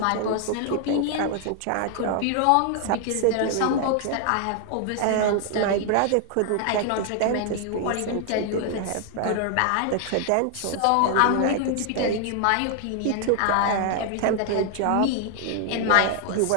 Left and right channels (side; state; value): both; different; correlation 0.00